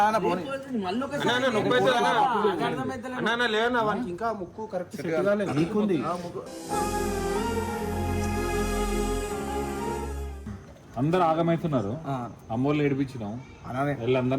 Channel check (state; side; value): identical; both; correlation 1.00